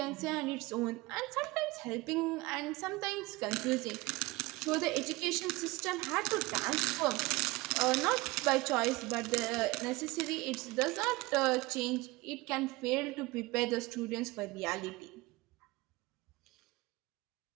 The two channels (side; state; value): left; quieter; 22.0 dB